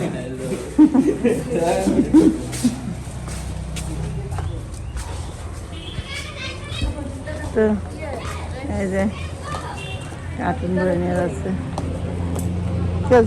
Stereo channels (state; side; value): identical; both; correlation 1.00